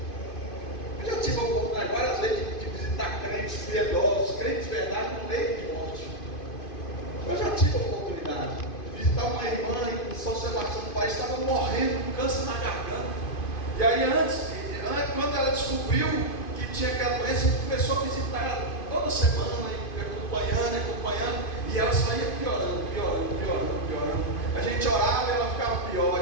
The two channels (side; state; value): right; late; 2.5 ms